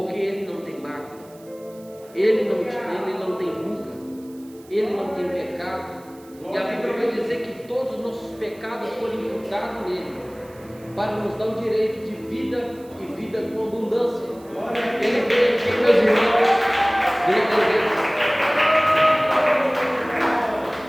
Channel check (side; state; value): right; noise; hiss, 26 dB below the sound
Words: ele não tem mácula, ele não tem ruga, ele não tem pecado. E a Bíblia vai dizer que todos os nossos pecados foram imputados nele, para nos dar o direito de vida e vida com abundância. Ele veio aqui, meus irmãos,